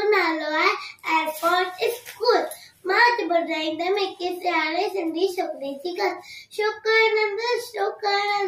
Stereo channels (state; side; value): identical; both; correlation 1.00